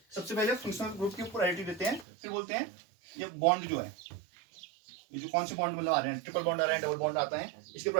सबसे पहले फंक्शनल ग्रुप की प्रायोरिटी देते हैं, फिर बोलते हैं ये बॉन्ड जो है, ये जो कौन से बॉन्ड मतलब आ रहे हैं, ट्रिपल बॉन्ड आ रहा है, डबल बॉन्ड आता है, इसकी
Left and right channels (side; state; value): left; drops out; at 2.1 s